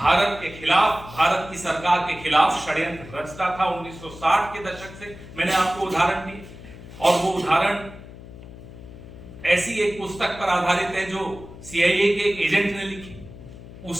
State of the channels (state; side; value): noise; left; hum, 16 dB below the sound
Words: के खिलाफ, भारत की सरकार के खिलाफ षड्यंत्र रचता था 1960 के दशक से। मैंने आपको उदाहरण दिए, और वो उदाहरण ऐसी एक पुस्तक पर आधारित है जो सीआईए के एक एजेंट ने लिखी।